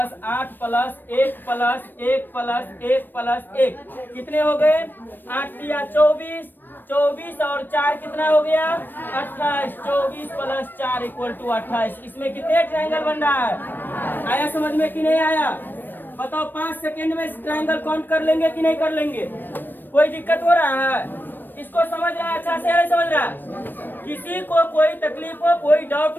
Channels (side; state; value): right; late; 0.093 ms